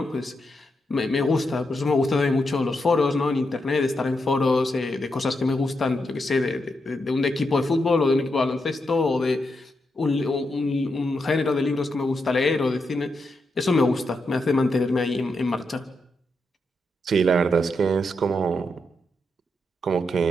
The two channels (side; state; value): both; normal; correlation 0.84